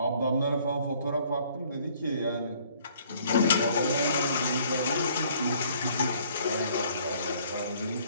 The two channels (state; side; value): inverted; both; correlation -0.59